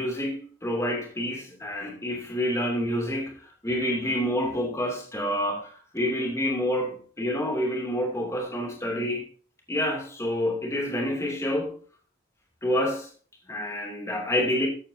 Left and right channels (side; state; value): both; normal; correlation 0.47